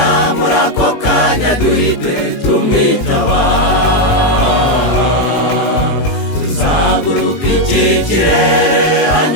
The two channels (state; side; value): late; right; 19 ms